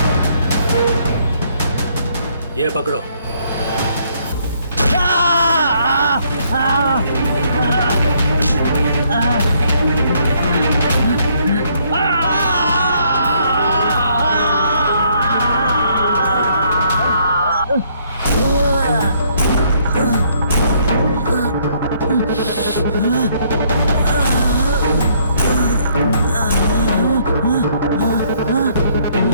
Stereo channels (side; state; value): both; inverted; correlation -0.67